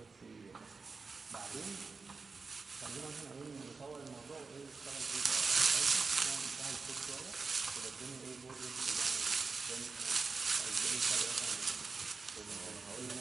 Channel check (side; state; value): left; quieter; 4.4 dB